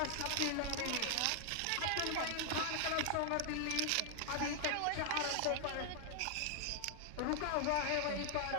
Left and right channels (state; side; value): different; both; correlation 0.00